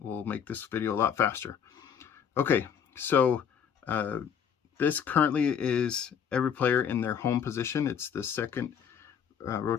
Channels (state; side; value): quieter; right; 7.7 dB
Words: make this video a lot faster. Okay, so this currently is every player in their home position. It's the second